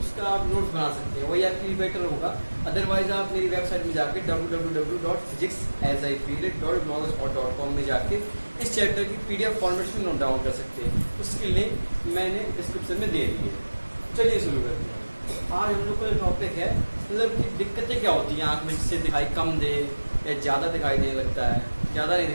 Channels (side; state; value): both; inverted; correlation -1.00